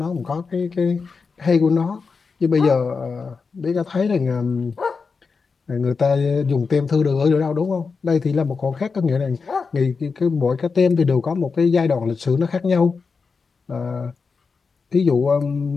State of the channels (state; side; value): quieter; right; 4.9 dB